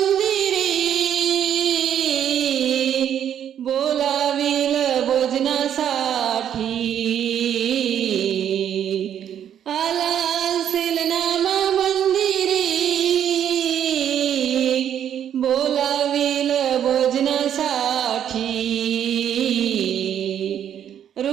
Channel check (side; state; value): left; quieter; 9.6 dB